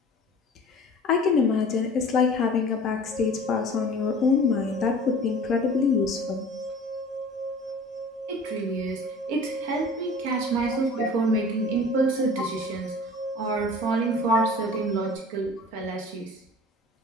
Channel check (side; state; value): both; normal; correlation 0.43